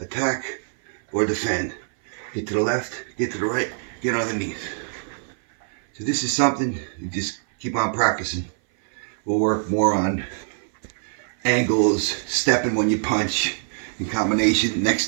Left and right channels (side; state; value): left; silent; 57 dB below the other